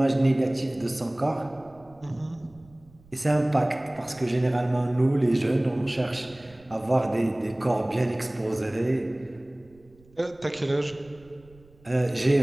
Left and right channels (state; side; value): noise; right; rumble, 27 dB below the sound